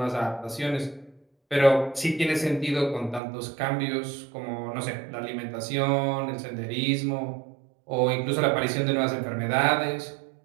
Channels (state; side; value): drops out; left; at 3.2 s